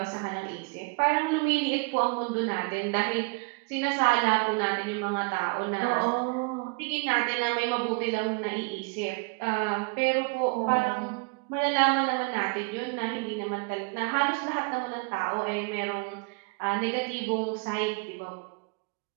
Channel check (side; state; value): left; quieter; 32.0 dB